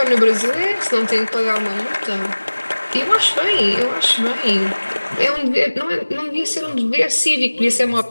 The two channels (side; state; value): both; inverted; correlation -1.00